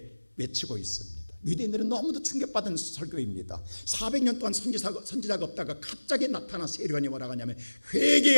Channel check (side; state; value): both; inverted; correlation -1.00